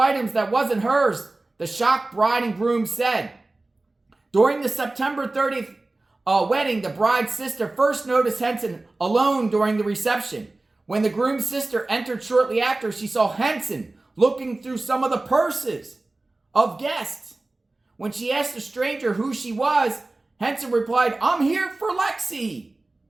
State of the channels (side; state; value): left; quieter; 3.0 dB